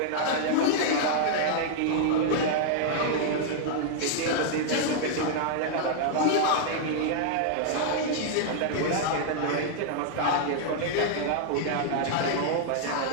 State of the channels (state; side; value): different; both; correlation -0.01